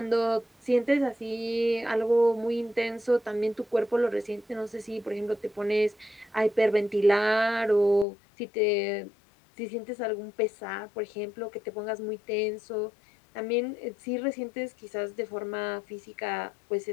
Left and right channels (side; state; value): right; drops out; at 8.1 s